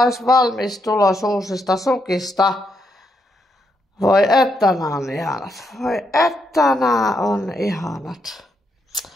valmis tulos uusista sukista. Voi että nämä on ihanat. Voi että nämä on ihanat.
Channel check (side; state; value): both; normal; correlation 0.79